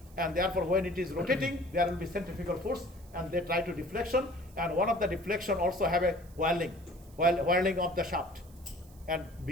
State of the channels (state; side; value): noise; right; hiss, 26 dB below the sound